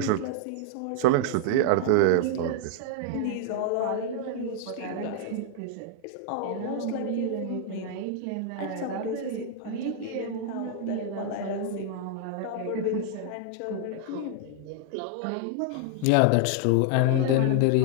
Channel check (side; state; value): both; different; correlation -0.01